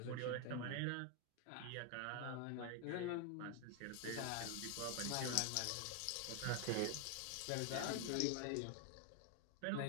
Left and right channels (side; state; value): both; different; correlation 0.00